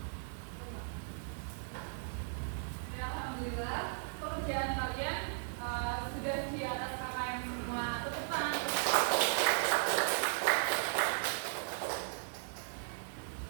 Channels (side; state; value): left; silent; digital silence